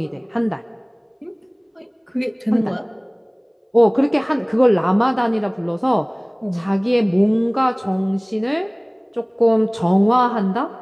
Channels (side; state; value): both; identical; correlation 1.00